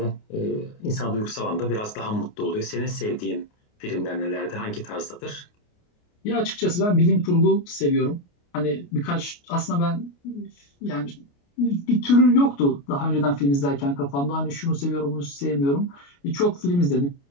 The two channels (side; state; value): right; late; 29 ms